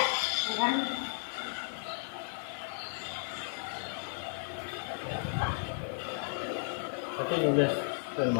Bukan. Tapi nulis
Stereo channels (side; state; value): right; silent; digital silence